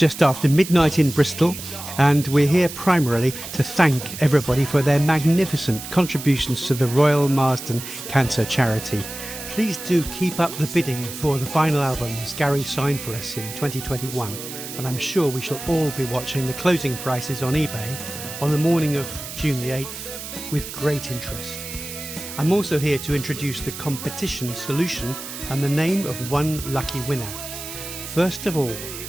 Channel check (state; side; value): noise; right; hiss, 10 dB below the sound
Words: after midnight in Bristol, and we're here primarily to thank everybody for their magnificent contributions to the Royal Marsden Cancer Charity. Please do keep up the bidding for the final albums Gary signed for us in 2021, and I'm sure we shall all be watching the closing prices on eBay on the morning of June the 8th with great interest. I'm also here to introduce the competition solution and the name of one lucky winner. First of all,